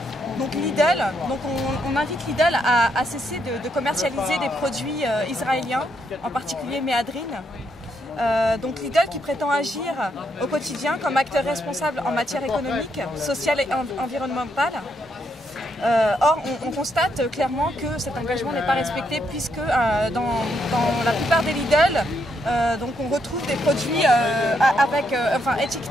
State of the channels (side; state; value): both; normal; correlation 0.77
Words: donc Lidl. Donc on invite Lidl à cesser de commercialiser des produits israéliens, en particulier Méadrine. Donc Lidl qui prétend agir au quotidien comme acteur responsable en matière économique, sociale et environnementale. Or, on constate clairement que cet engagement n'est pas respecté puisque dans la plupart des Lidl, donc on retrouve des produits